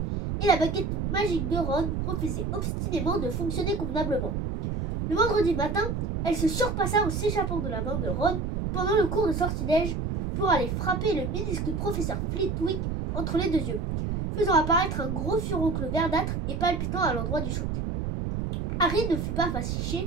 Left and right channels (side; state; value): right; noise; rumble, 2 dB below the sound